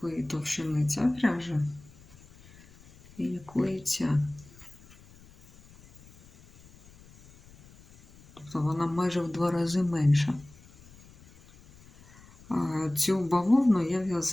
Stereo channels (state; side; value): noise; left; rumble, 24 dB below the sound